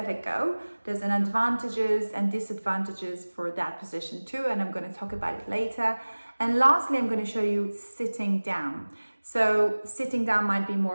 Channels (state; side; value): inverted; both; correlation -1.00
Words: a go. There's an advantages and disadvantages for that position too, and I'm going to talk about it later. And lastly, I'm going to show you sitting down. So sitting down might be